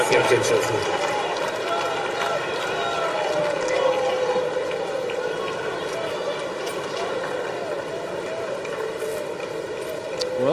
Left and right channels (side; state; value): both; identical; correlation 1.00